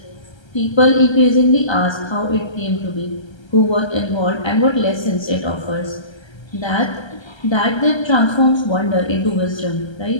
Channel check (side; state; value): right; late; 1.3 ms